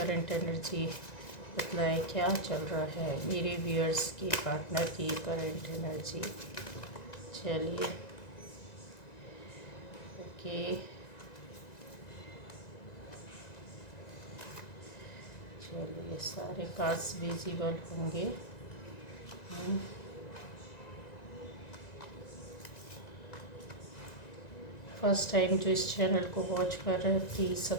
एनर्जी बतलाए क्या चल रहा है। मेरे व्यूअर्स की पार्टनर की करंट एनर्जी। चलिए ओके, चलिए सारे कार्ड्स विजिबल होंगे। फर्स्ट टाइम जो इस चैनल को वॉच कर रहे हैं प्लीज़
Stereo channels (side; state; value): right; late; 1.9 ms